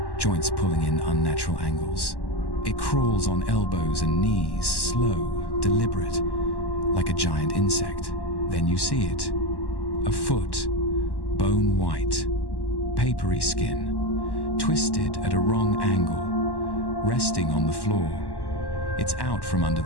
joints pulling in unnatural angles. It crawls on elbows and knees, slow, deliberate, like a giant insect. Then you see it. A foot, bone white, papery skin, twisted at a wrong angle, resting on the floor. It's out from under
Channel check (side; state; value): right; late; 1.1 ms